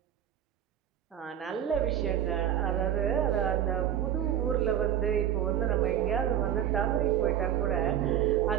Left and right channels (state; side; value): quieter; left; 10.4 dB